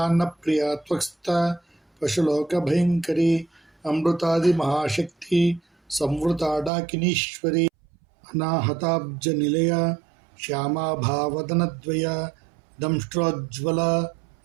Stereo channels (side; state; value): left; drops out; at 6.7 s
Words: त्वक्स्था पशुलोकभयङ्करी अमृतादिमहाशक्ति संवृता डाकिनीश्वरी अनाहताब्जनिलया श्यामाभावदनद्वया दंष्ट्रोज्ज्वला